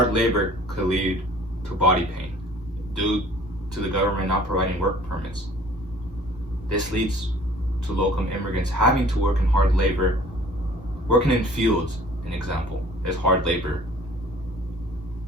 labor could lead to body pain due to the government not providing work permits. This leads to low-income immigrants having to work in hard labor. Working in fields, an example, is hard labor,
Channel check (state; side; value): normal; both; correlation 0.52